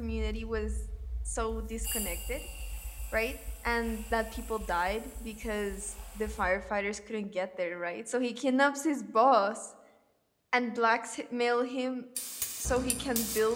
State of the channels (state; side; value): identical; both; correlation 1.00